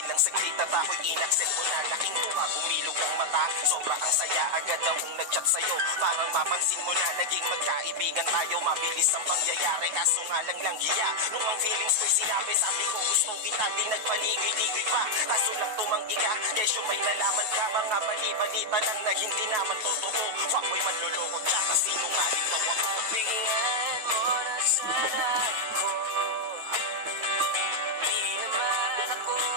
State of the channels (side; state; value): left; late; 9.3 ms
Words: saglit at ako'y inaccept mo na. Laking tuwa, bumilog ang mata, sobra ang saya. Agad akong nag-chat sa'yo, parang mapansin mo na naging magkaibigan tayo. Mabilis ang pangyayari, kaso nga lang hiya. Nung ang feelings ko'y sinabi, sabi ko gusto kita, di nagpaligoy-ligoy pa. Kaso lang tumanggi ka, kesyo may nalaman ka. Mga bali-balita lang na hindi naman totoo. Fuckboy, manloloko, tsaka sinungaling daw ako. Bigyan mo na sana ako. Di naman ako